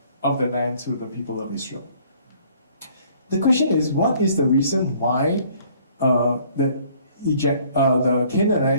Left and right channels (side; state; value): both; inverted; correlation -0.59